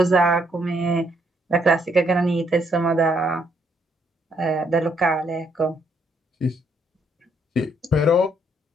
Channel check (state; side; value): normal; both; correlation 0.72